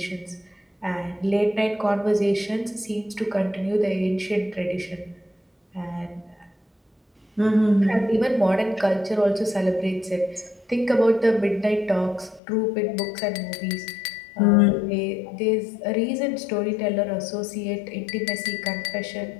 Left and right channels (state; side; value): drops out; right; at 12.4 s